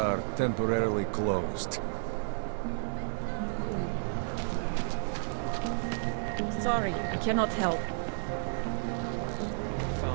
temporarily closed. Sorry, I cannot help. I would have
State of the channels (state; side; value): silent; left; digital silence